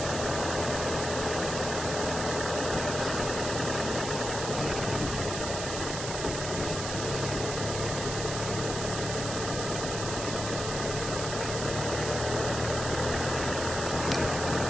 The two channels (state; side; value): noise; right; hiss, 5 dB below the sound